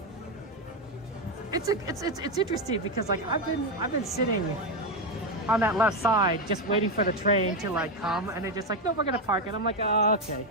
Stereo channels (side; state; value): both; normal; correlation 0.08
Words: It's interesting because like I've been sitting on that left side, just waiting for the train to like come, and they're just like, no, we're gonna park it. I'm like, oh, okay.